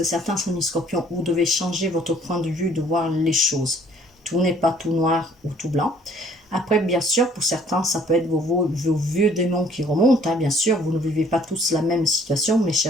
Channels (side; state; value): both; normal; correlation 0.60